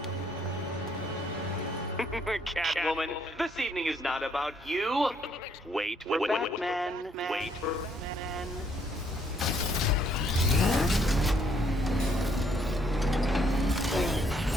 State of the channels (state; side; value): normal; both; correlation 0.69